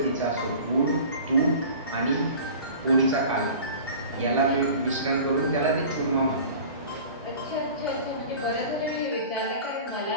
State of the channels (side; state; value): both; inverted; correlation -0.40